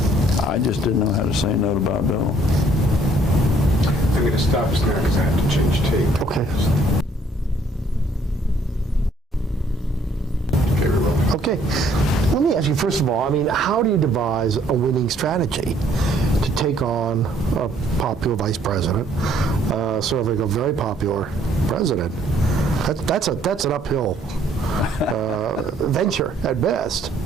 I just didn't know how to say no to Bob Dole. I'm going to stop us now because I have to change tape. Okay. Okay, we're rolling. Okay. Let me ask you, first of all, I mean, how do you devise a winning strategy to take on a popular vice president, serving a very popular president? That's an uphill venture at best.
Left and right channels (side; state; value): both; normal; correlation 0.63